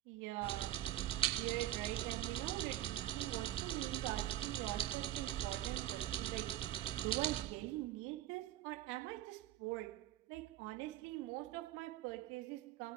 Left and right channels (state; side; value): quieter; left; 13.8 dB